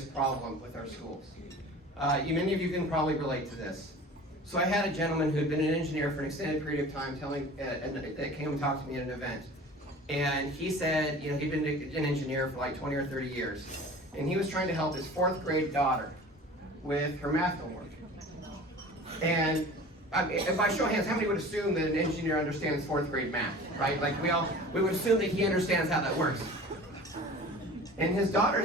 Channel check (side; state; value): both; normal; correlation 0.41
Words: problem with our schools. Many of you can probably relate to this. So I had a gentleman who had been an engineer for an extended period of time that came and talked to me at an event. And he said, he'd been an engineer for like 20 or 30 years. And he was trying to help his 4th grade daughter with her math homework. And if I show hands, how many would assume that an engineer understands 4th grade math, right? Like we would assume that he understands how that works. And his